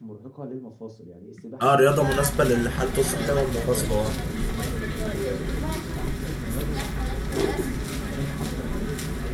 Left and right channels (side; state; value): both; identical; correlation 1.00